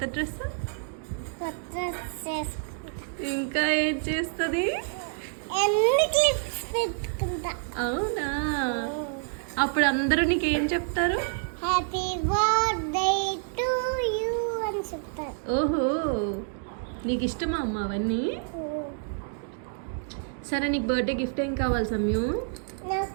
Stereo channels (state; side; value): silent; left; digital silence